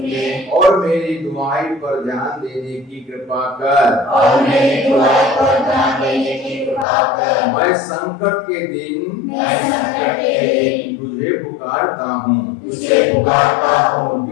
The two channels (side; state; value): right; drops out; at 6.9 s